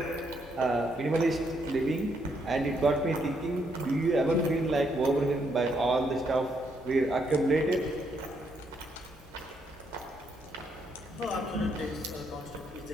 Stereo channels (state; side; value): normal; both; correlation 0.75